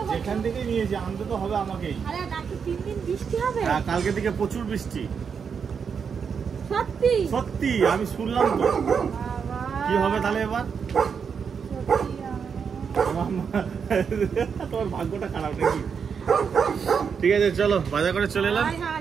এখান থেকে নিয়েছি, আনতে তো হবে আমাকেই। হ্যাঁ, কালকে থেকে প্রচুর বৃষ্টি। সত্যি আমি শুনলাম তো। কি হবে তাহলে এবার? তোমার ভাগ্যটা খারাপ নাকি? ঠিক আছে চলো, বাজার করে চলে এলাম।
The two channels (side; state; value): left; quieter; 6.5 dB